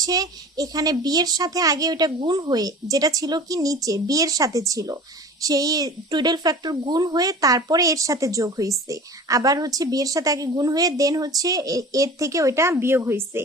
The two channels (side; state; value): both; normal; correlation 0.40